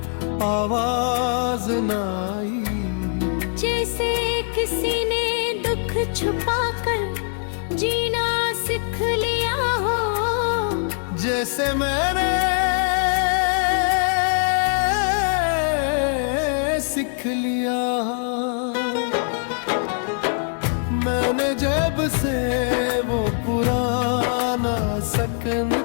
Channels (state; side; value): silent; right; 62 dB below the other